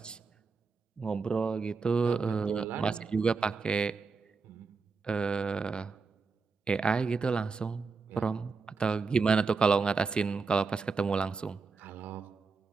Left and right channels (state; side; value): quieter; left; 4.7 dB